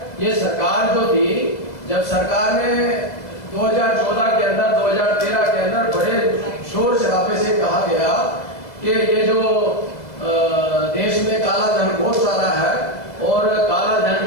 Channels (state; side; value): late; right; 2.0 ms